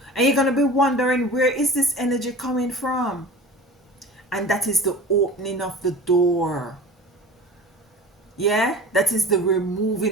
And you're going to be wondering, where is this energy coming from? And that is the opening of the door. Yeah? That is the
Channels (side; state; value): both; normal; correlation 0.37